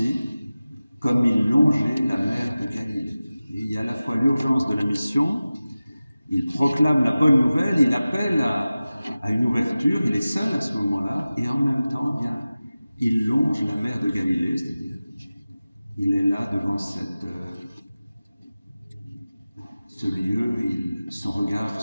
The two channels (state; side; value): inverted; both; correlation -0.96